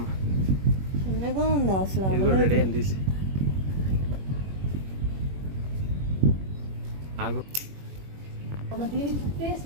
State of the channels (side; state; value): left; late; 21 ms